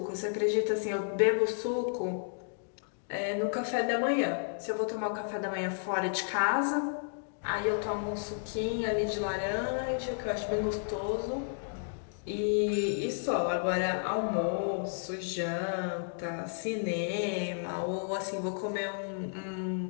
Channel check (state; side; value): silent; right; digital silence